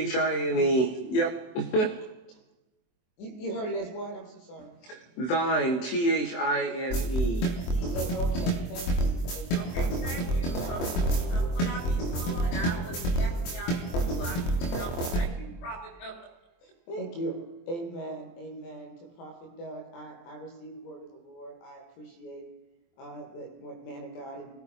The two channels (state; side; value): late; right; 23 ms